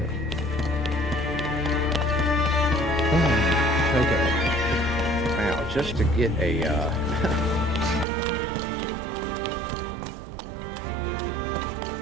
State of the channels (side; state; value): left; drops out; at 8.1 s